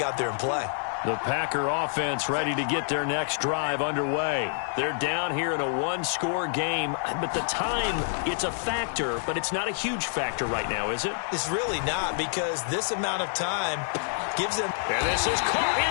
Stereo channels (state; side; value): silent; right; 60 dB below the other